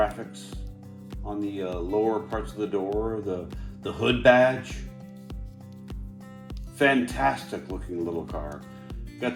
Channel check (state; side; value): identical; both; correlation 1.00